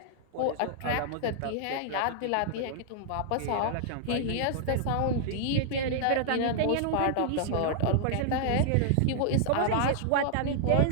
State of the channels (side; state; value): both; different; correlation -0.01